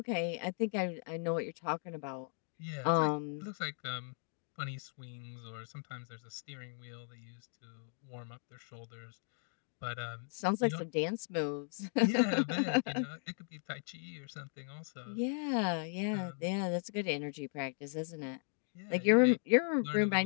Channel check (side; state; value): right; silent; 53 dB below the other